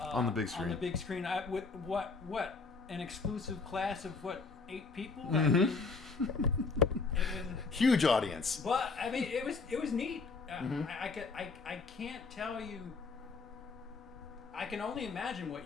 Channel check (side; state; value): right; quieter; 4.3 dB